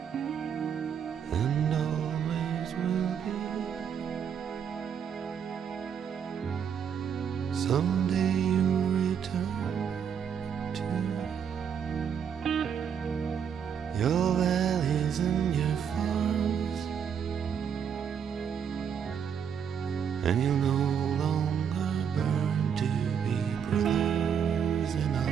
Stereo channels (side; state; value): left; quieter; 7.7 dB